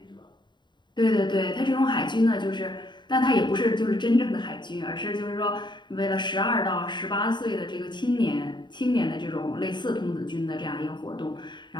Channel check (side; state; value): right; late; 0.22 ms